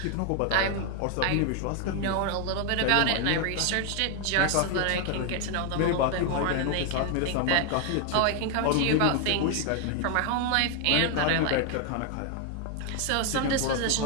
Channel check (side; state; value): both; different; correlation 0.00